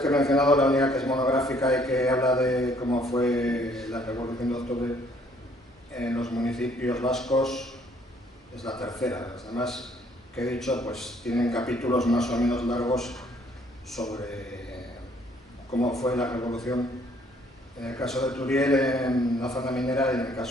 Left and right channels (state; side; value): normal; both; correlation 0.63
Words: he mencionado, la única que es monográfica y que habla de cómo fue la Revolución de Octubre en los municipios vascos es la tercera. Las demás que he dicho pues tienen capítulos más o menos largos sobre cómo fue la revolución en el caso de Turiel en la zona minera y en el